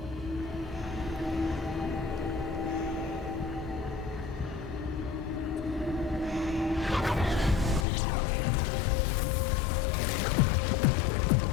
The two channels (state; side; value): drops out; right; at 7.9 s